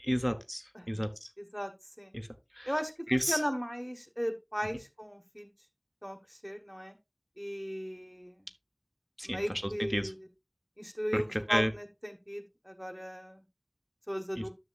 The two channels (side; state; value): both; identical; correlation 1.00